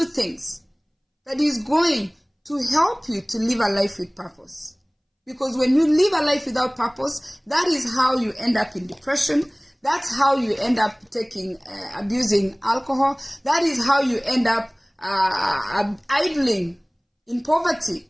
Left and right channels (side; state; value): both; identical; correlation 1.00